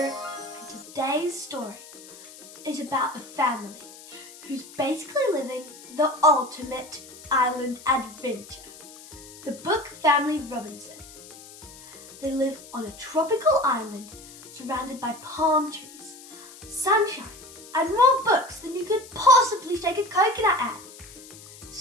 and today's story is about a family who's basically living the ultimate island adventure. The Book Family Robinson. They live on a tropical island surrounded by palm trees, sunshine, and more books than you could possibly shake a coconut at.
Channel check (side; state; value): left; noise; hiss, 18 dB below the sound